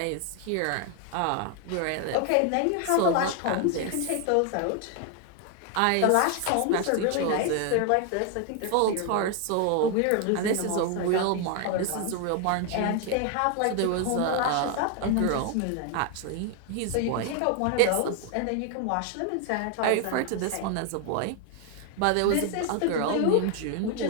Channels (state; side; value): different; both; correlation 0.00